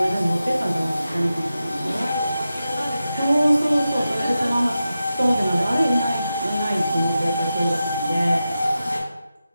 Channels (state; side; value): inverted; both; correlation -0.91